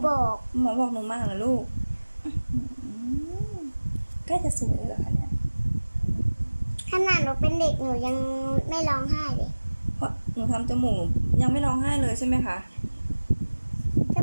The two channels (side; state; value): both; inverted; correlation -1.00